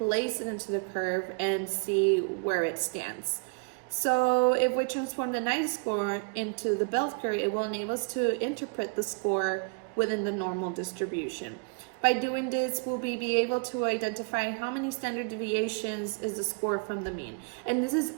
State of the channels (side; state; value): left; quieter; 33.7 dB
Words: it into the curve and see where it stands. So if we transform the 90 score into the bell curve, it will enable us to interpret the score within the normal distribution. By doing this, we'll be able to identify how many standard deviations is the score from the mean. And this is